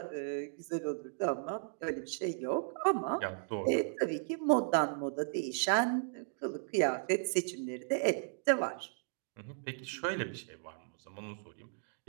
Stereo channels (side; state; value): left; silent; digital silence